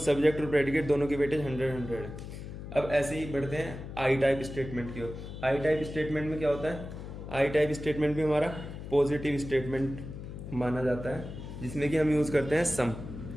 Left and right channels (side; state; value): left; noise; hum, 10 dB below the sound